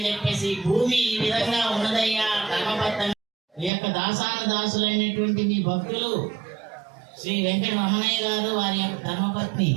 చెప్పేసి భూమి ఈ విధంగా ఉన్నదయ్యా కర్మబద్ధం. ఈ యొక్క దాసానుదాసులైనటువంటి మీ భక్తులు శ్రీ వెంకట రమణయ్య గారు, వారి యొక్క ధర్మపత్ని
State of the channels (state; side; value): drops out; left; at 3.7 s